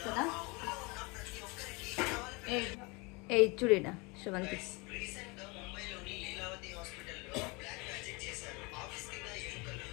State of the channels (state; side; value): quieter; right; 27.5 dB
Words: కదా. ఏ చూడేనా శ్రవంతి